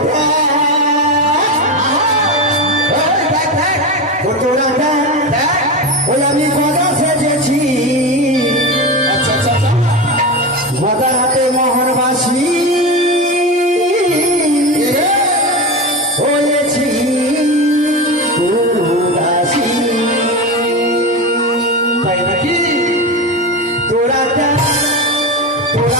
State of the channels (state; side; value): normal; both; correlation 0.20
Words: দেখ ও তোরা দেখ ওই আমি গদা সেজেছি আচ্ছা আচ্ছা আচ্ছা গদা হাতে মোহনবাসী হয়েছি উদাসী তাই নাকি তোরা দেখ